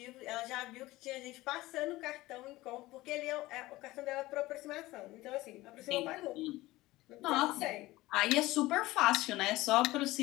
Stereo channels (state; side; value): quieter; right; 18.6 dB